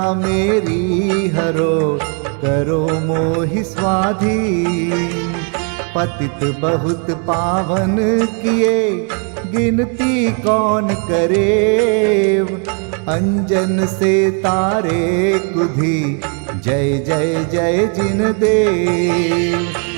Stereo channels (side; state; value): left; quieter; 39.7 dB